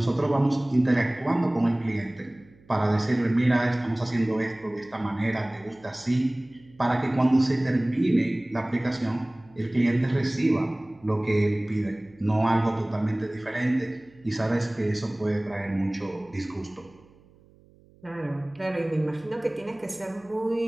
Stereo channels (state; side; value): noise; right; hum, 28 dB below the sound